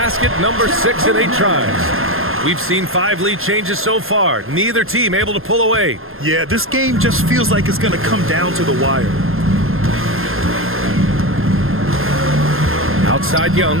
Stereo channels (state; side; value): late; left; 0.60 ms